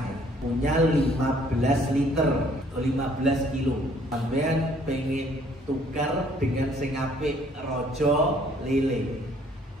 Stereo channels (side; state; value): both; normal; correlation 0.61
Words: ya, punya 15 liter atau 15 kilo. Sampean pengen tukar dengan sing apik rojo lele,